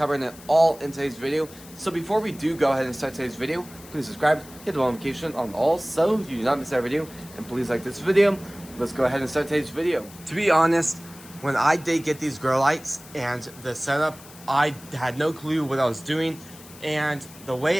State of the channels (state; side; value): noise; left; hiss, 20 dB below the sound